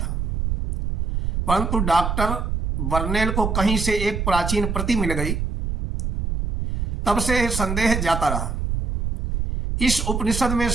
परंतु डॉक्टर बर्नेल को कहीं से एक प्राचीन प्रति मिल गई। तब से संदेह जाता रहा। इस उपनिषद में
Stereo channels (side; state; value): right; noise; rumble, 1 dB below the sound